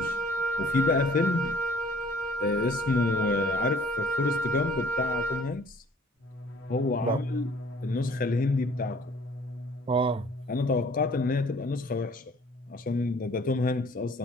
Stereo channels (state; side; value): normal; both; correlation 0.55